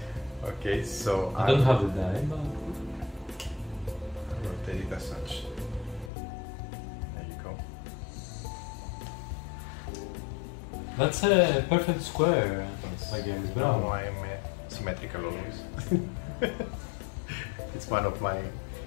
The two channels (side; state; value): right; drops out; at 6.1 s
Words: Okay, so I don't have the die, but I'll rotate it as such. There you go. that's a perfect square. Again, it's No, brown. I'm symmetrical always. It's one of my I